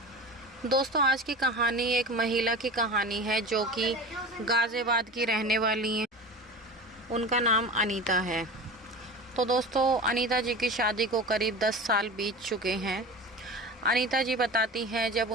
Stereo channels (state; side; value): normal; both; correlation 0.33